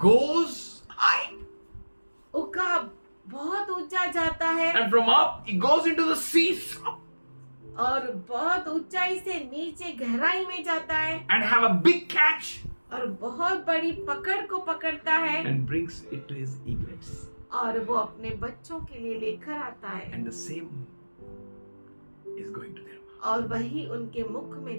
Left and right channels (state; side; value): inverted; both; correlation -1.00